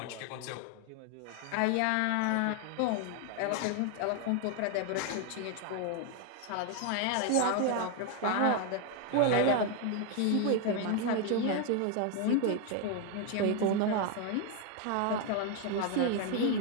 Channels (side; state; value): both; different; correlation 0.01